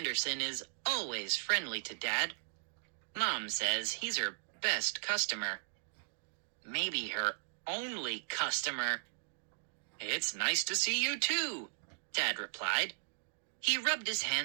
is always friendly to Dad. Mom says he's her best customer. Maybe her only customer. "It's nice to see you too," Dad replied. He rubbed his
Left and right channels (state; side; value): silent; left; digital silence